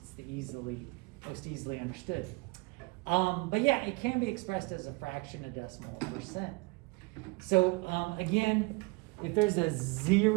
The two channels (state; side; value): quieter; left; 26.6 dB